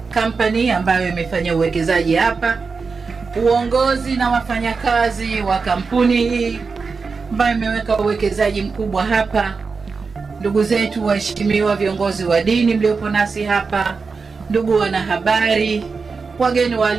Company ambayo imefanya uwekezaji hapa, uongozi na wafanyakazi wa kampuni hii ambayo imeweka uwekezaji mkubwa hapa, ndugu zetu waheshimiwa viongozi wa dini mliopo nasi hapa, ndugu wanahabari, wageni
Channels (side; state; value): left; quieter; 4.8 dB